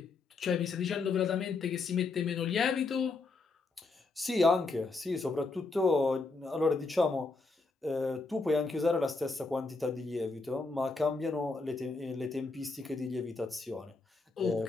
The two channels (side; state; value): right; quieter; 3.8 dB